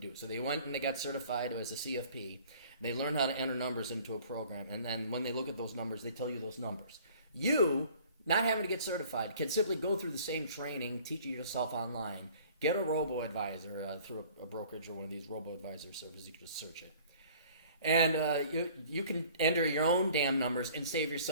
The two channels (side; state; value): both; inverted; correlation -0.51